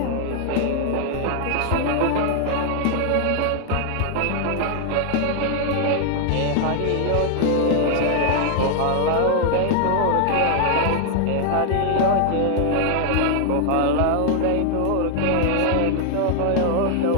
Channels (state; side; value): different; both; correlation 0.00